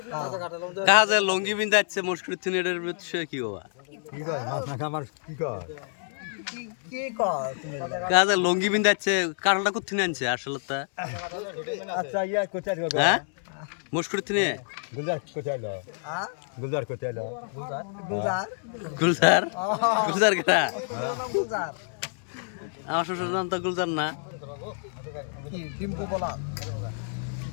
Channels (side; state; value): right; silent; digital silence